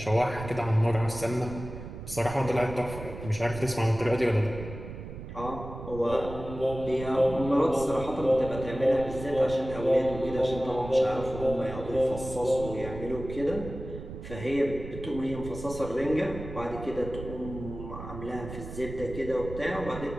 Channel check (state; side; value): noise; right; rumble, 10 dB below the sound